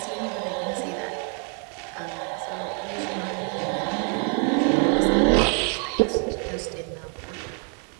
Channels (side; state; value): left; quieter; 38.9 dB